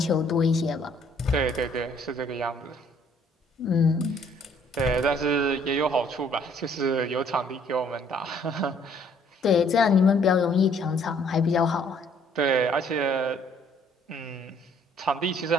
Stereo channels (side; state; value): both; normal; correlation 0.62